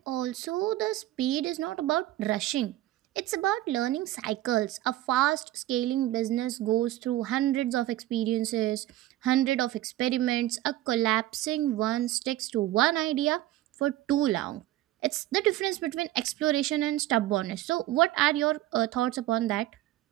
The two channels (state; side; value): quieter; left; 15.1 dB